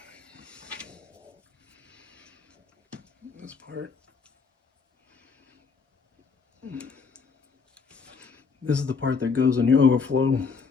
This part. This is the part that goes on your overflow.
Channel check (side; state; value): right; quieter; 5.2 dB